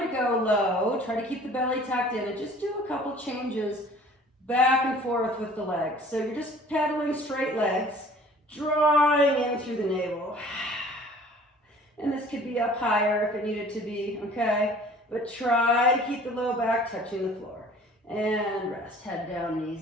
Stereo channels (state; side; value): normal; both; correlation 0.50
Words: go low, try to keep the belly tucked in and just do a couple changes back and forth with the legs. So you're just pedaling straight legs, drawing in through the navel. And this could be up higher if it needed to be, okay? But try to keep the low back touching the floor. And rest, head down,